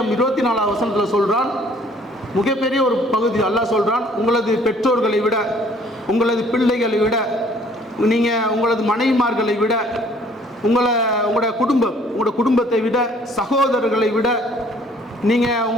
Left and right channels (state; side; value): normal; both; correlation 0.58